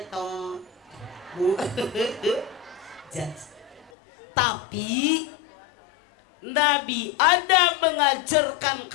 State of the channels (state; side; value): drops out; right; at 3.9 s